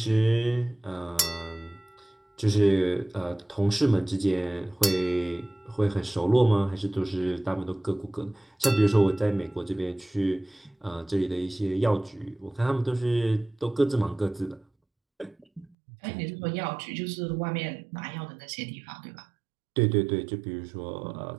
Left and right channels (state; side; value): drops out; left; at 15.7 s